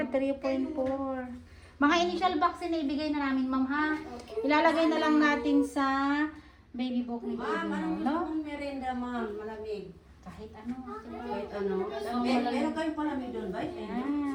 3.4. Mga initial vaccine na ibigay na namin, ma'am, ha? Ilalagay na lang natin sa baby book ni baby mo, no? Merenda, ma'am. Malamig. Kahit ano. Kahit ano. Meron kayong palamig doon, ba? Ayan.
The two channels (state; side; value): identical; both; correlation 1.00